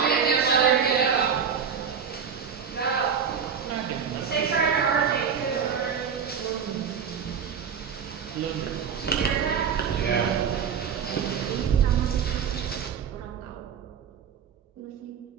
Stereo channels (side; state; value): left; quieter; 7.0 dB